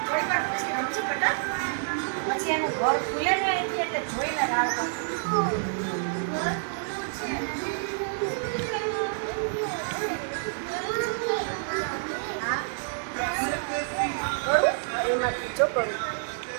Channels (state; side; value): silent; left; 59 dB below the other